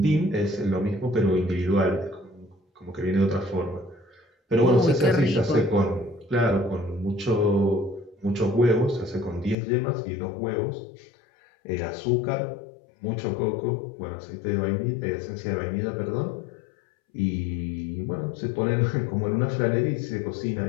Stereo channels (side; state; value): right; drops out; at 9.6 s